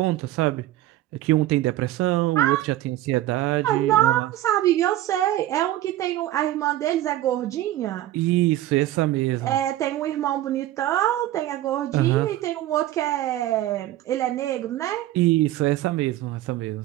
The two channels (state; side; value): quieter; left; 14.6 dB